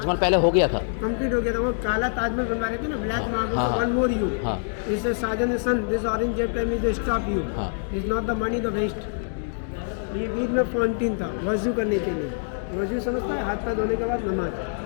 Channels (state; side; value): silent; right; digital silence